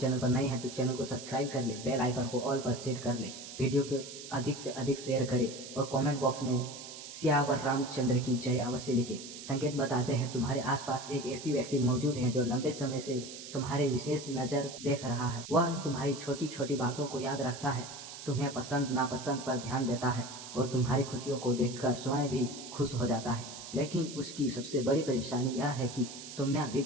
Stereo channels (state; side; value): noise; right; hiss, 12 dB below the sound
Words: पर नए हैं तो चैनल को सब्सक्राइब कर ले, बेल आइकन को ऑल पर सेट कर ले, वीडियो को अधिक से अधिक शेयर करें और कमेंट बॉक्स में सियावर रामचंद्र की जय अवश्य लिखे। संकेत बताते हैं तुम्हारे आसपास एक ऐसी व्यक्ति मौजूद है जो लंबे समय से तुम्हारे विशेष नजर देख रहा है। वह तुम्हारी छोटी छोटी बातों को याद रखता है, तुम्हें पसंद नापसंद पर ध्यान देता है और तुम्हारी खुशियों को देखकर स्वयं भी खुश हो जाता है। लेकिन उसकी सबसे बड़ी परेशानी यह है कि तुमने अभी